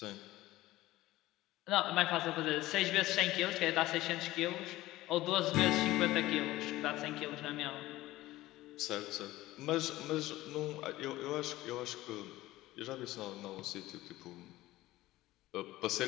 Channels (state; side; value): quieter; right; 17.0 dB